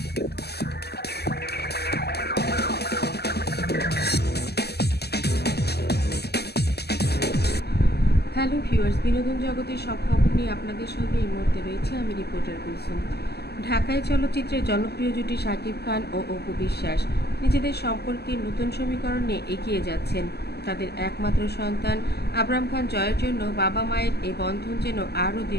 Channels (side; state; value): right; late; 0.47 ms